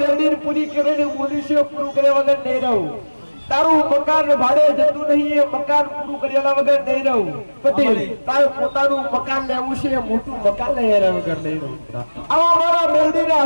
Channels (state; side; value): inverted; both; correlation -1.00